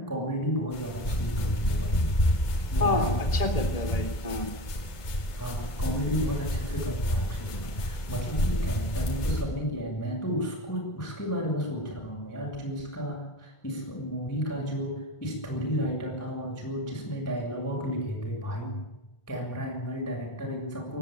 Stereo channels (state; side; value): late; right; 1.5 ms